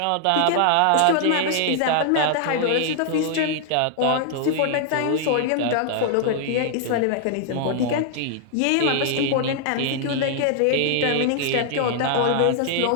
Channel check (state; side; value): different; both; correlation 0.00